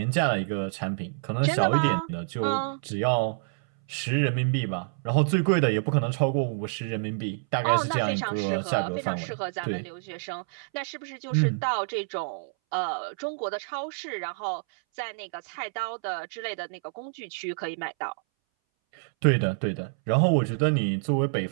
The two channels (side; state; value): left; silent; 60 dB below the other